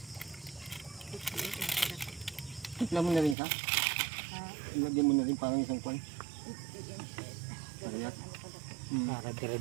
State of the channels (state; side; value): drops out; left; at 3.4 s